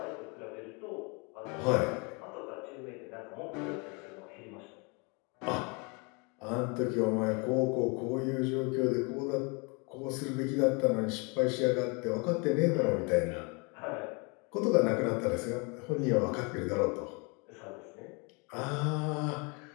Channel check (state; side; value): quieter; right; 31.2 dB